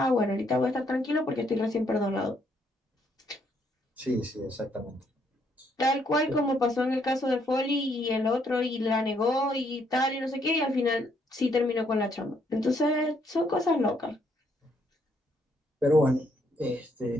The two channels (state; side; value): normal; both; correlation 0.71